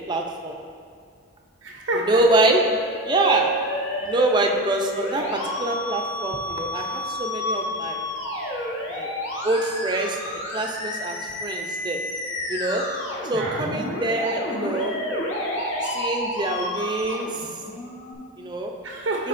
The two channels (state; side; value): normal; both; correlation 0.22